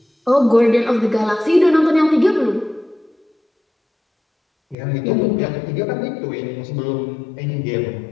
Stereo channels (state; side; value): drops out; right; at 4.8 s